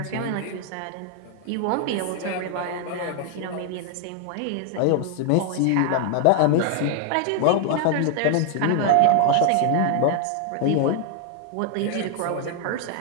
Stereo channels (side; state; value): both; different; correlation 0.00